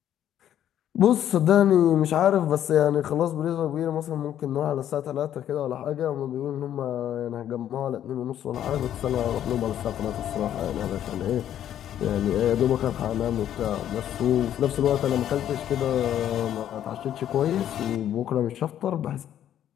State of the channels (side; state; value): right; quieter; 10.8 dB